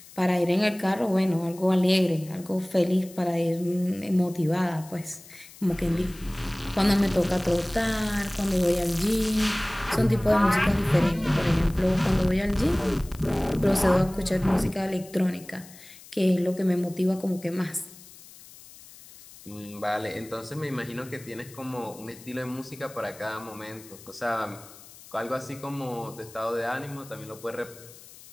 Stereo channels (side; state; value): left; noise; hiss, 20 dB below the sound